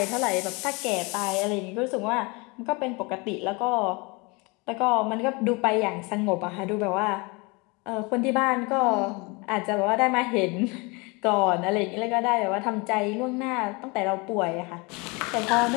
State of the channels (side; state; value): right; quieter; 27.9 dB